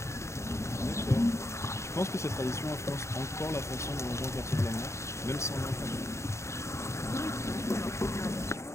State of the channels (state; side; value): late; right; 0.14 ms